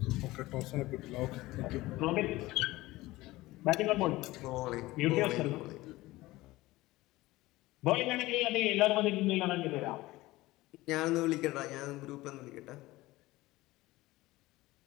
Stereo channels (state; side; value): quieter; right; 18.8 dB